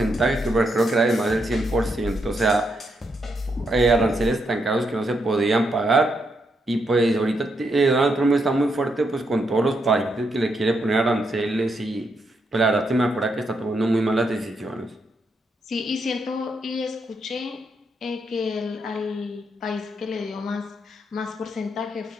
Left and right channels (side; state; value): both; normal; correlation 0.79